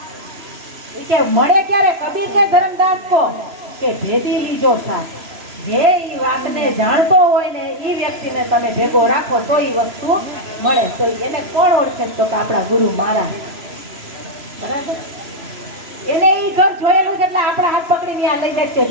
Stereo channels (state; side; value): late; left; 3.0 ms